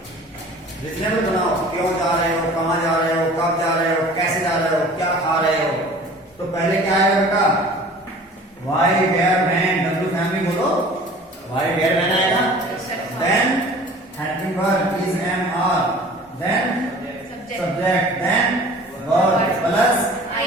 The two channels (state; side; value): normal; both; correlation 0.45